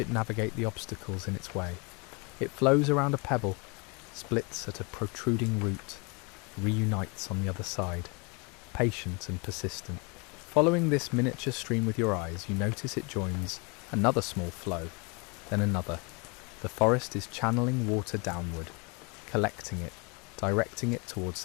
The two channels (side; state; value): right; quieter; 30.9 dB